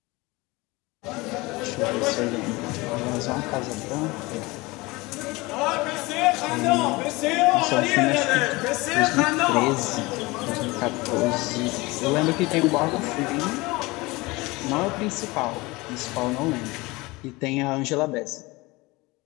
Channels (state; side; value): quieter; right; 22.8 dB